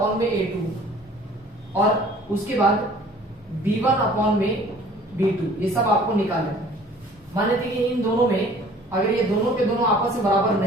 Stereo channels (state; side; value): normal; both; correlation 0.51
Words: में A2 और उसके बाद B1 अपॉन में B2, ये सब आपको निकालना है। मान लेते कि इन दोनों में अगर ये दोनों के दोनों आपस में बराबर